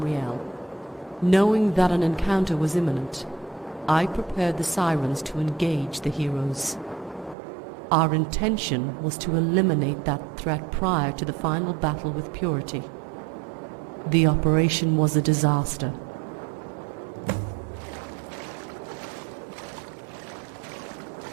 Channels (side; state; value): left; drops out; at 7.4 s